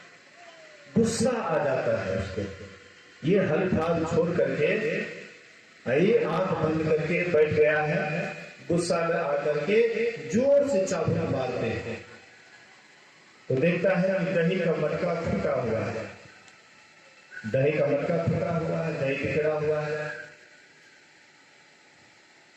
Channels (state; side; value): identical; both; correlation 1.00